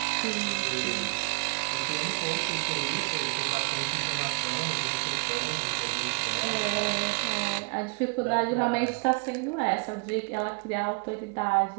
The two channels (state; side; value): quieter; left; 36.6 dB